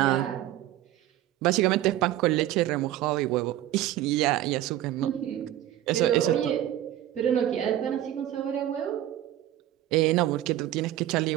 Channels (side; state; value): left; quieter; 13.1 dB